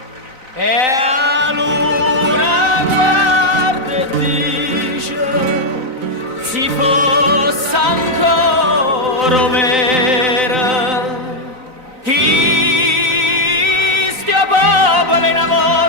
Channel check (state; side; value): late; left; 3.9 ms